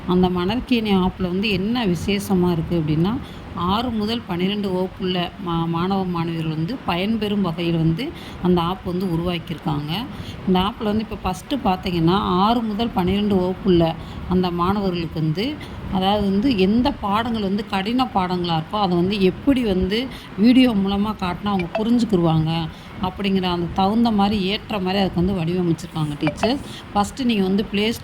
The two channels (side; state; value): both; identical; correlation 1.00